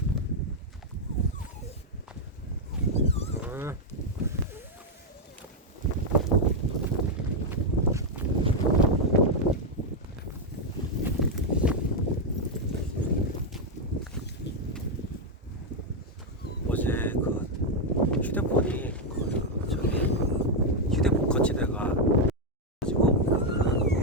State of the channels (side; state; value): both; normal; correlation 0.01